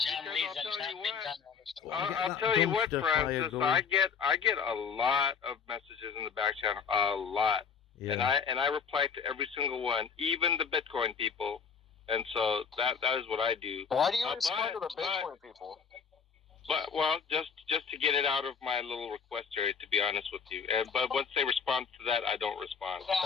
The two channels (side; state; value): right; quieter; 6.3 dB